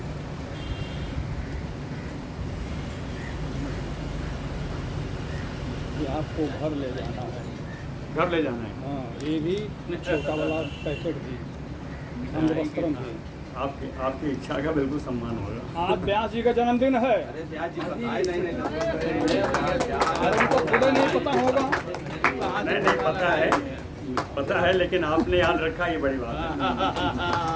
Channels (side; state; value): both; identical; correlation 1.00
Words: ये आपको घर ले जाना है। घर ले जाना है? हाँ, ये भी छोटा वाला पैकेट भी अंगवस्त्रम भी। आपकी इच्छा का बिल्कुल सम्मान होगा। आज व्यास जी का जन्मदिन है। अरे ब्याज जी नहीं पता होगा। नहीं पता है, लेकिन आपने याद रखा, ये बड़ी बात है।